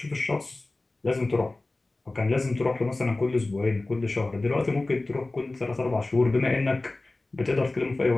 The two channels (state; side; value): quieter; right; 3.0 dB